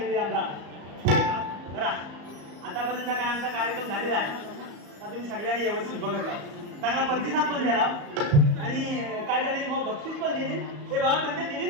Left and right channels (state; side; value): late; left; 34 ms